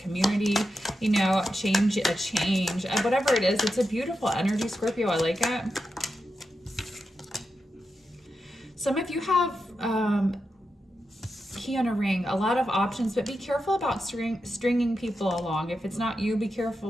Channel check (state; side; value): normal; both; correlation 0.88